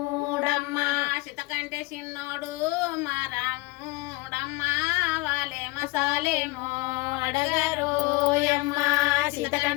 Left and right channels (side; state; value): right; quieter; 22.8 dB